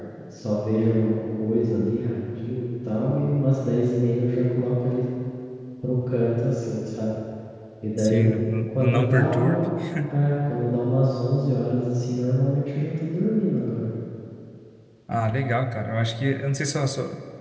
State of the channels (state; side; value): identical; both; correlation 1.00